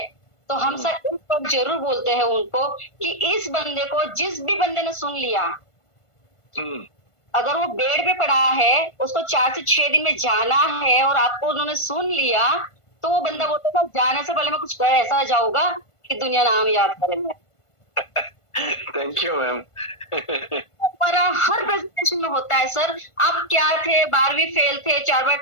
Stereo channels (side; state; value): right; late; 1.5 ms